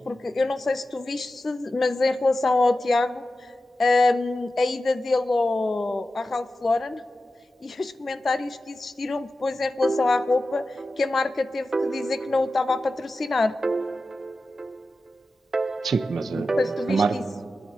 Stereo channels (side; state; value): both; normal; correlation 0.93